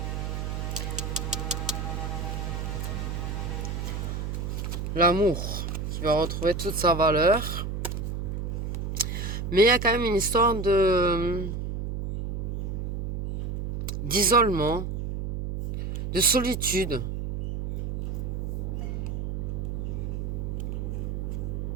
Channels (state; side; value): noise; right; hum, 3 dB below the sound